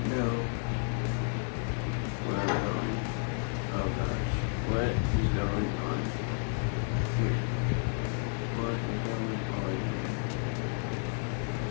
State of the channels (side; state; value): right; silent; 57 dB below the other